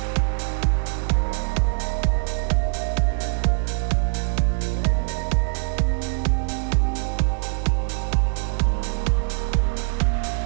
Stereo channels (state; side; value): silent; left; 63 dB below the other